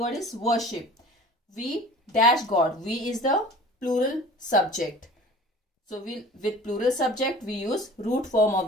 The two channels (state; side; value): normal; both; correlation 0.43